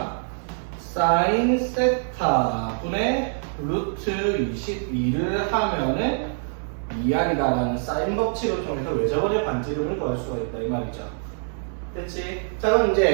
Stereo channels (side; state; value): left; silent; 62 dB below the other